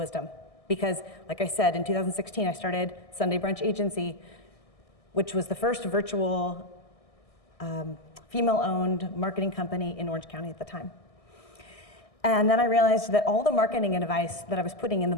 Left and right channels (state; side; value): late; right; 1.6 ms